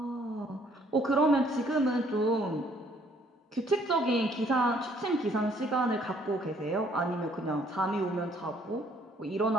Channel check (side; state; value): both; normal; correlation 0.63